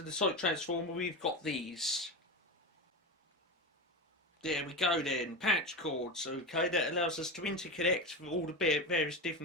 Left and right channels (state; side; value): normal; both; correlation 0.21